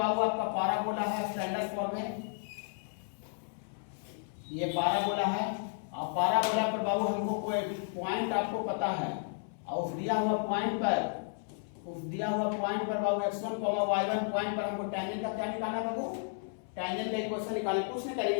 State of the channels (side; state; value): right; silent; 56 dB below the other